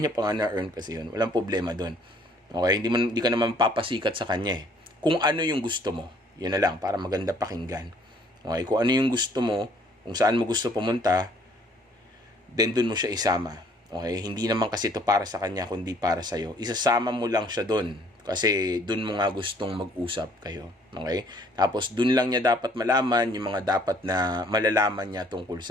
niya pa nga na-earn kasi yun. Walang problema doon. Okay? Hindi ka naman papasikat sa kanya Kung ano yung gusto mo, yun na lang, para maganda pakinggan. Okay? Kung ano yung gusto mo, kung saan mo gusto pumunta, then doon mo siya isama. Okay? Hindi naman kasi ito para sa kanya, kundi para sa'yo. Isasama mo lang siya doon. Kasi doon mo nga gustong mag-usap kayo. Okay? Tapos doon lang niya dapat malaman yung mga dapat na malalaman niya tungkol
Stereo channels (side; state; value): both; normal; correlation 0.60